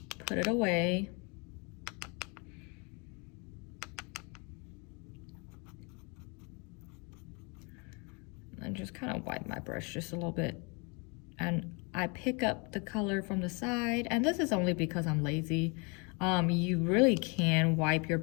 put it away. And just kind of wipe my brush just a little bit. And I pick up the color from the side, and this is only because I'm lazy. You really can wipe your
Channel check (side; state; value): right; quieter; 32.2 dB